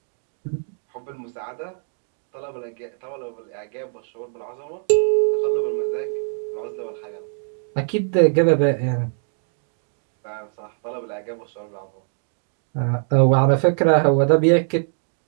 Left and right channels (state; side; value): silent; left; digital silence